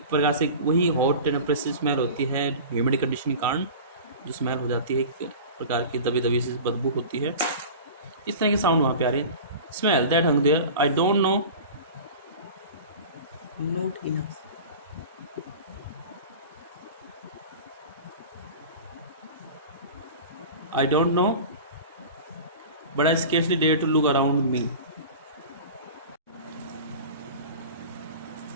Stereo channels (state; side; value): inverted; both; correlation -0.35